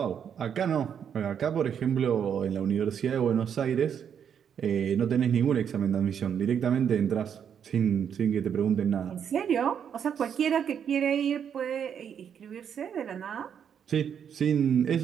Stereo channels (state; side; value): quieter; left; 8.1 dB